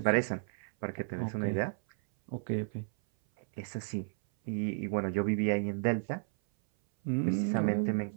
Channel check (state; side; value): silent; left; 56 dB below the other